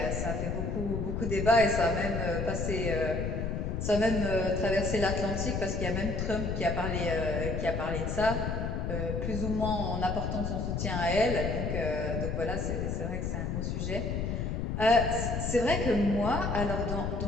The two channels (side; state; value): left; noise; rumble, 1 dB below the sound